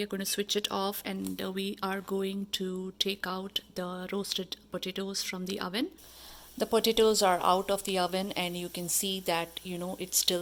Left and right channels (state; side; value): identical; both; correlation 1.00